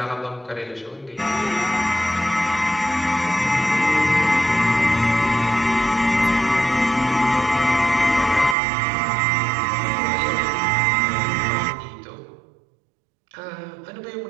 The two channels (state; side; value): drops out; left; at 8.6 s